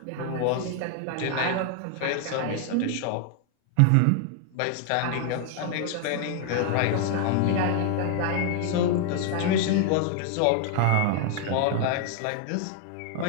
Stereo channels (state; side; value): different; both; correlation 0.00